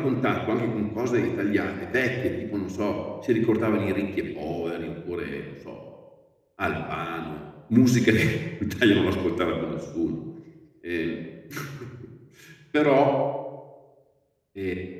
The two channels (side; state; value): both; identical; correlation 1.00